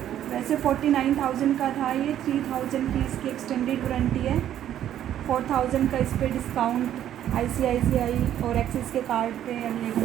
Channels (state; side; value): quieter; left; 11.1 dB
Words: वैसे 49,000 का था ये, 3,000 की इसकी एक्सटेंडेड वारंटी है, 4,000 का इस पर डिस्काउंट ICICI और एक्सिस के कार्ड पे